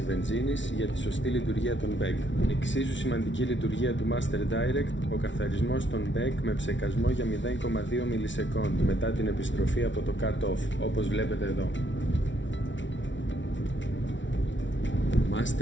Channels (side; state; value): right; late; 0.55 ms